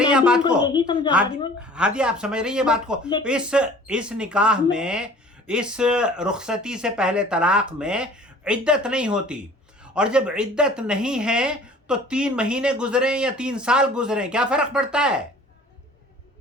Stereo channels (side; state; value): both; normal; correlation 0.48